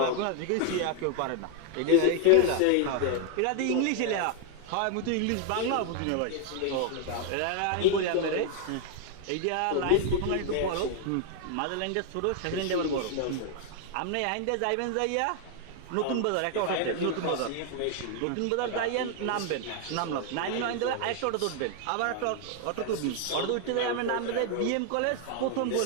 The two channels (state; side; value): different; both; correlation 0.00